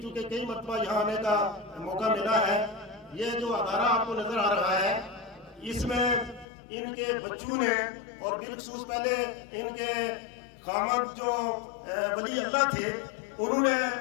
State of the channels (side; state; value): right; drops out; at 6.5 s